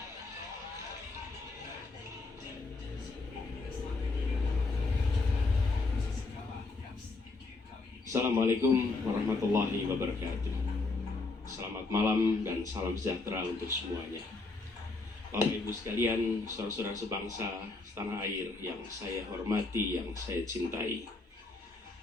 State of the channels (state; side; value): quieter; right; 3.6 dB